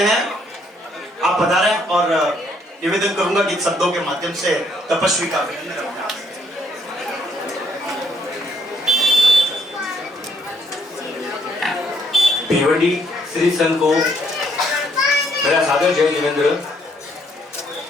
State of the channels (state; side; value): normal; both; correlation 0.70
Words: आप पधारें और निवेदन करूंगा कि शब्दों के माध्यम से तपस्वी का भिवंडी श्री संघ को मेरा सादर जय जिनेंद्र।